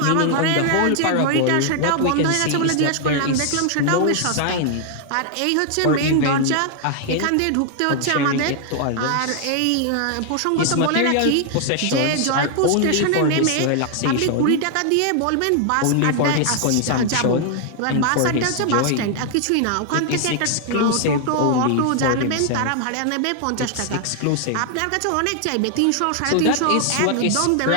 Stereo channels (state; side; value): different; both; correlation 0.00